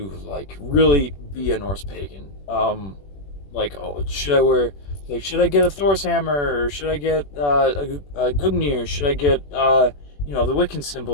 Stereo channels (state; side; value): late; right; 21 ms